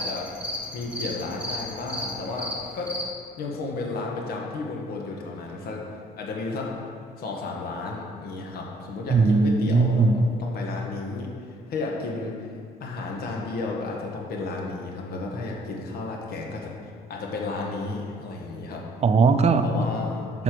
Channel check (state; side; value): normal; both; correlation 0.61